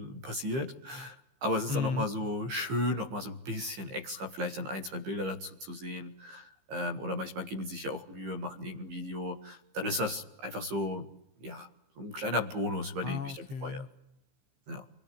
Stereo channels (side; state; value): left; late; 15 ms